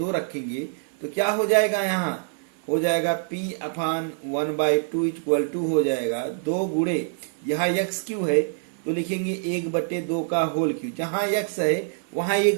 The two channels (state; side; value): silent; left; 58 dB below the other